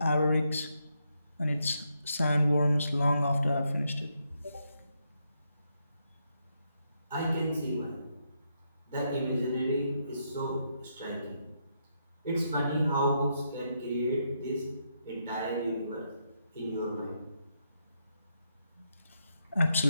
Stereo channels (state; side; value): inverted; both; correlation -0.79